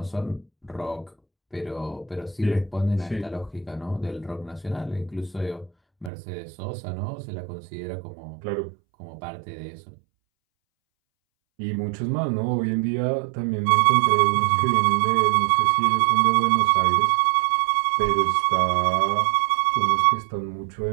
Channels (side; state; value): left; drops out; at 6.1 s